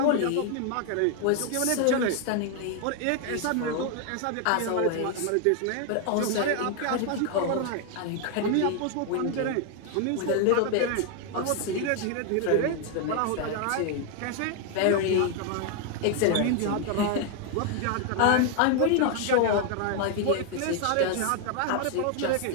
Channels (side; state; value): both; different; correlation 0.01